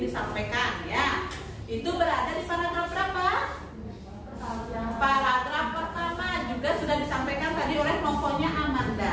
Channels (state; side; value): identical; both; correlation 1.00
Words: disampaikan ya. Itu berada di paragraf berapa? Paragraf pertama, juga sudah disampaikan tadi oleh kelompoknya